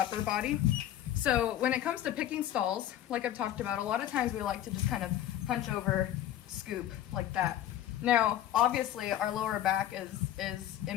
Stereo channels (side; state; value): right; quieter; 12.1 dB